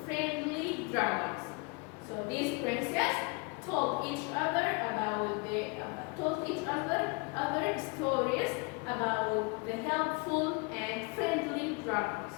friendly dragons. So these princesses told each other other stories about the helpful and friendly dragons.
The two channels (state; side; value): quieter; right; 31.0 dB